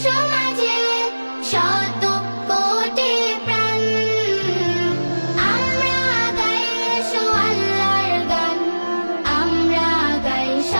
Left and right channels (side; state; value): both; inverted; correlation -1.00